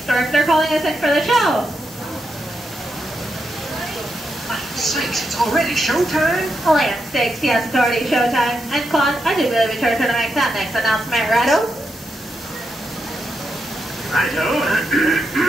story, but they're calling us in for the show. My sakes, it's already showtime. Land stakes, yes, it's already showtime. And Claude, I do believe it's your turn to make that next announcement, righto? Righto.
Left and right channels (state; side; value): normal; both; correlation 0.84